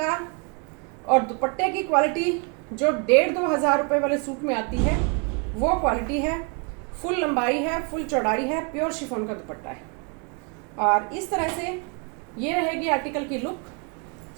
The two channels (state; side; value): quieter; left; 35.5 dB